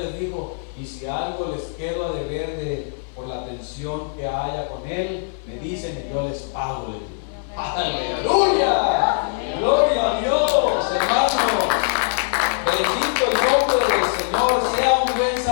dijo, y si algo les quedo a deber por la atención que haya con él, me dicen y yo les pago. ¡Aleluya! ¡Gloria a Dios, hermanos! Bendito el nombre del Señor. Sea un buen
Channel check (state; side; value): silent; right; digital silence